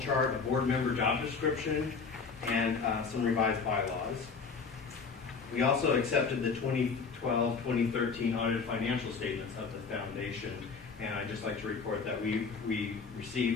a board member job description, and some revised bylaws. We also accepted the 2012-2013 audited financial statements of the foundation, and I'd just like to report that we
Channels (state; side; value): quieter; right; 5.1 dB